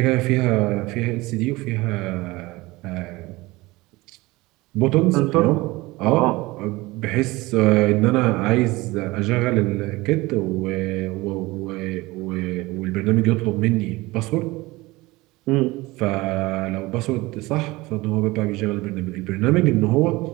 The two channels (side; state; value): left; quieter; 21.0 dB